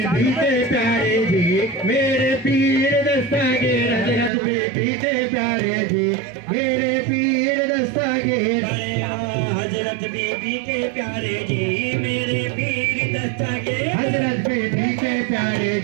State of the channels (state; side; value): drops out; left; at 4.3 s